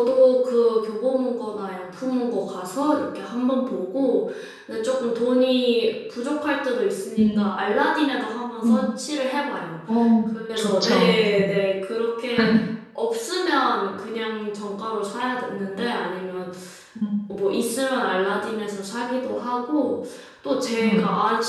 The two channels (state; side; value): identical; both; correlation 1.00